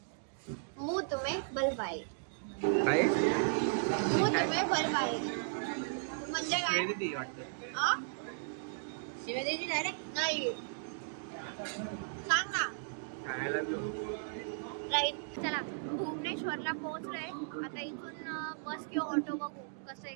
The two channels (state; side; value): silent; left; digital silence